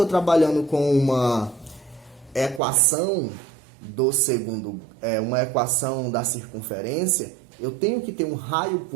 trabalhando com uma equação do segundo, uma equação da circunferência, eu tenho que ter um raio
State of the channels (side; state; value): left; drops out; at 2.6 s